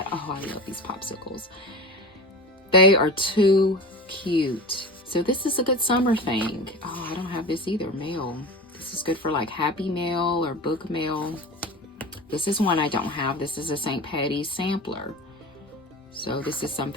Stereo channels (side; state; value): both; normal; correlation 0.31